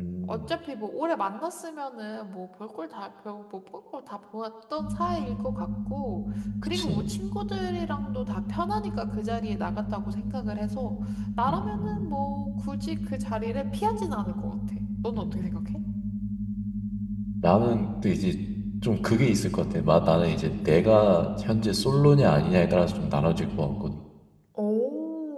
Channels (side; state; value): both; identical; correlation 1.00